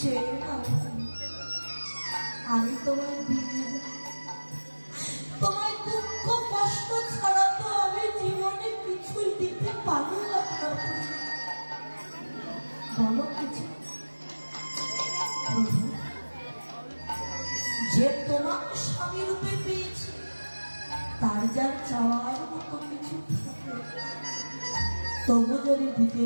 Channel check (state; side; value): inverted; both; correlation -1.00